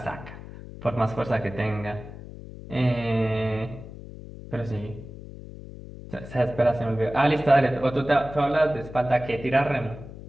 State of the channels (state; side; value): noise; left; hum, 14 dB below the sound